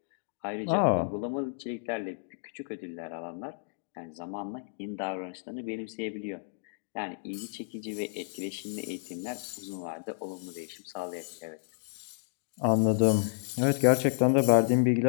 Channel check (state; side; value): silent; right; digital silence